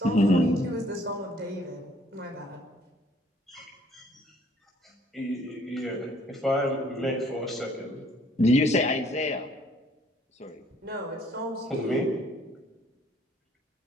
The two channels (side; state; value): both; normal; correlation 0.61